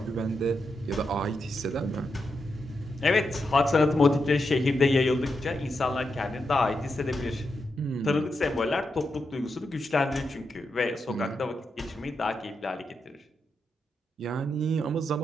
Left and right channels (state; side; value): normal; both; correlation 0.85